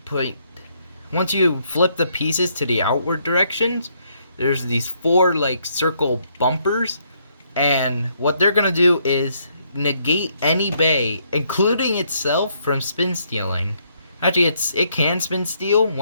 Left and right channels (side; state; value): both; inverted; correlation -0.71